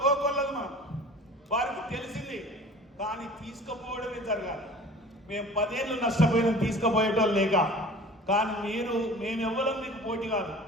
కోకొల్లలు వారికి తెలిసింది, కానీ తీసుకుపోవడమే జరగాలి. మేము 10 ఏళ్ళు నష్టపోయినాం తీసుకుపోయేటోళ్ళు లేక. కానీ మేమెవ్వరం మీకు పోటీ కాదు,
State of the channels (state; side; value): normal; both; correlation 0.44